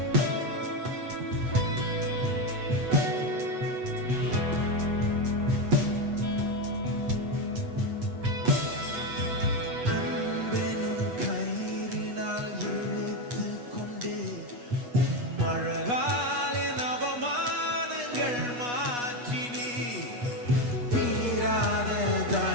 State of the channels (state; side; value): late; left; 8.2 ms